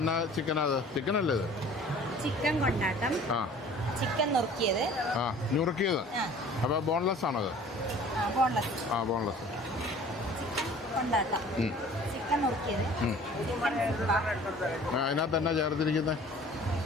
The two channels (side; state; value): both; normal; correlation 0.48